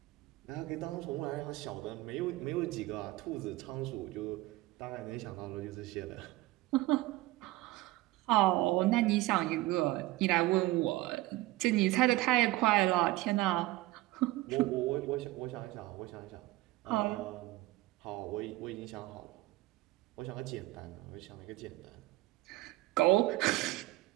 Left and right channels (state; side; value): quieter; left; 18.7 dB